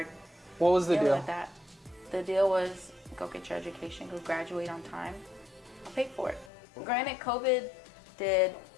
What was the dealing deal? with that. The deal was go get your education, go graduate on time. I'll pay for it. Granted, COVID did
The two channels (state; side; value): drops out; right; at 6.5 s